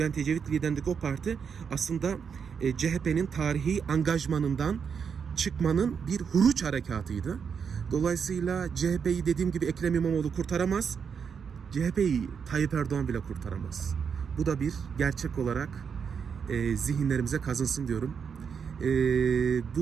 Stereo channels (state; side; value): quieter; left; 6.6 dB